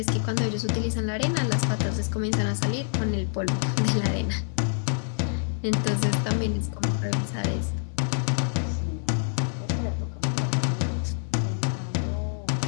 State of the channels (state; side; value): silent; right; 60 dB below the other